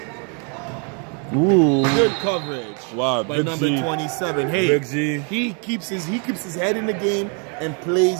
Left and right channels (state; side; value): quieter; left; 38.5 dB